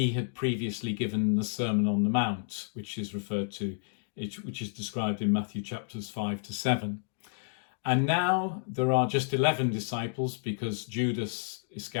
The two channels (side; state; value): right; silent; digital silence